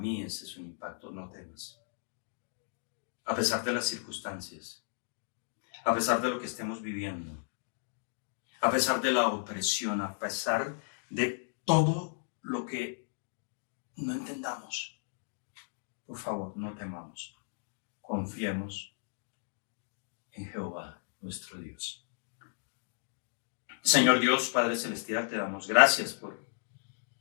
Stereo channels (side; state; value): right; silent; digital silence